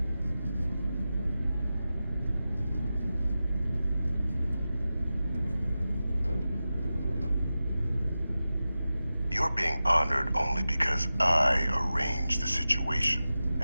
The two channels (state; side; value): inverted; both; correlation -0.94